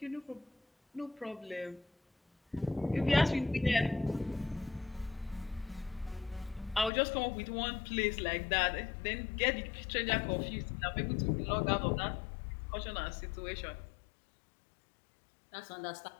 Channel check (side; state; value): right; drops out; at 6.9 s